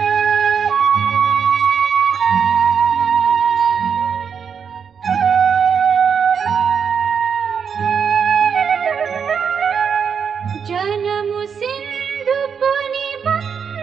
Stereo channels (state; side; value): quieter; left; 6.8 dB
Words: जन्म सिंधु पुनि